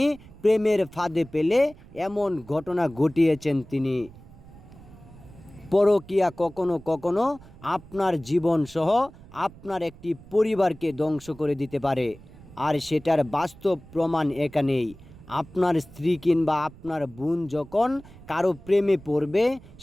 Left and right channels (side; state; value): right; noise; rumble, 21 dB below the sound